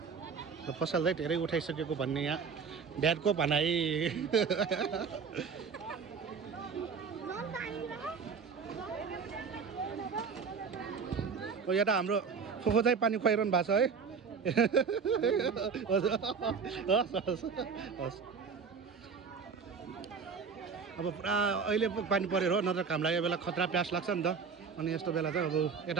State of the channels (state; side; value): quieter; left; 5.8 dB